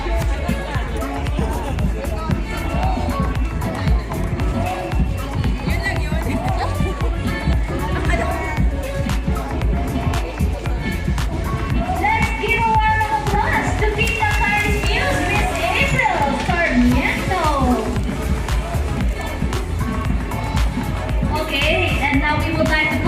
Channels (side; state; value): both; identical; correlation 1.00